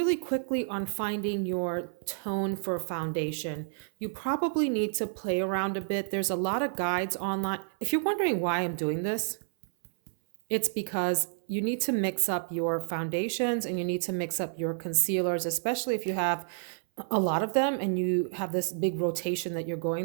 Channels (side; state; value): left; silent; 58 dB below the other